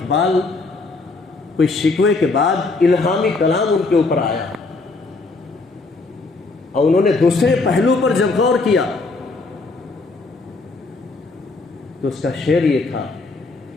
کوئی شکوے کے بعد الہامی کلام ان کے اوپر آیا اور انہوں نے دوسرے پہلو پر جب غور کیا تو اس کا شعر یہ تھا،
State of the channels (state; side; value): quieter; right; 3.6 dB